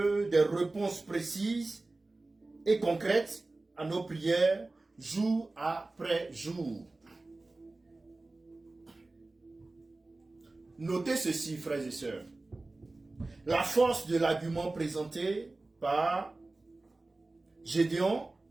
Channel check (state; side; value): quieter; left; 3.1 dB